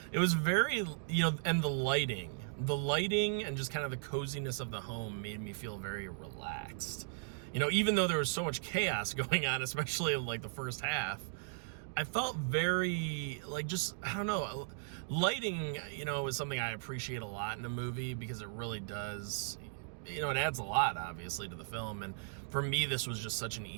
was very, you know, and the lighting and just kind of the coziness of the home made me feel very relaxed. You know, even though there was so much chaos going on, especially in like the first half, I felt very, like, just, I don't know, lighting, you know, is something I appreciate a lot in a movie, because it really does, you know, it adds a lot, obviously, to the film. And for me, this was just such an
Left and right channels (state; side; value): silent; left; digital silence